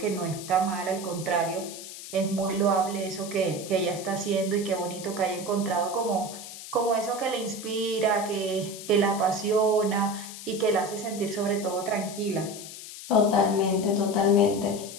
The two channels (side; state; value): left; noise; hiss, 12 dB below the sound